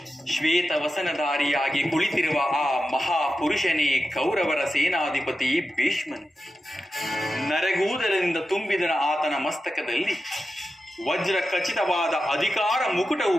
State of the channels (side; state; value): both; normal; correlation 0.91